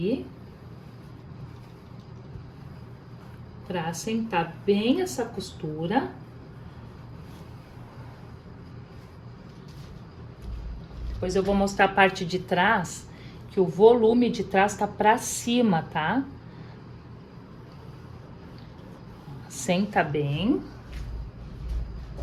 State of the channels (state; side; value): identical; both; correlation 1.00